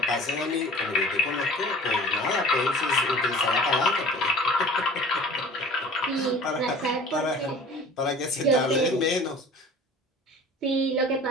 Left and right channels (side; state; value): both; normal; correlation 0.44